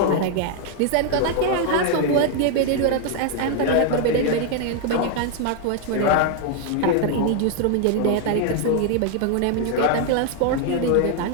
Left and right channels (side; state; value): both; different; correlation 0.01